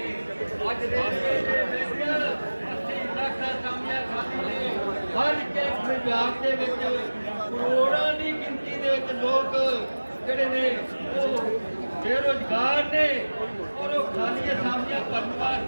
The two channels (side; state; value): both; inverted; correlation -1.00